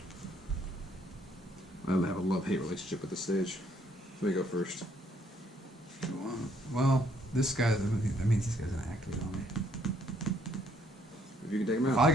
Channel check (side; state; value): both; normal; correlation 0.68